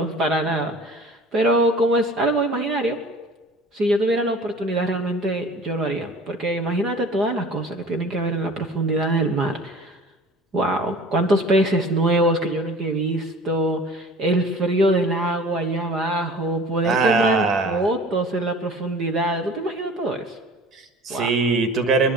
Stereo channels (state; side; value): normal; both; correlation 0.43